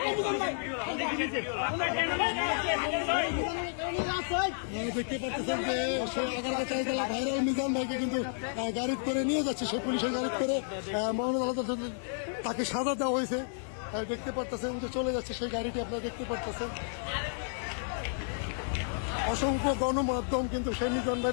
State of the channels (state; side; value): silent; right; digital silence